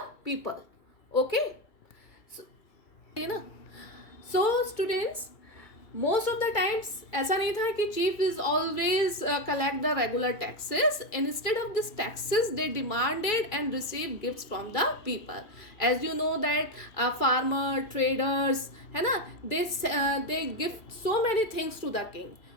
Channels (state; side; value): late; right; 2.3 ms